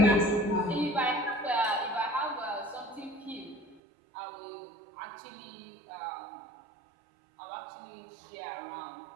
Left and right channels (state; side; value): drops out; left; at 3.8 s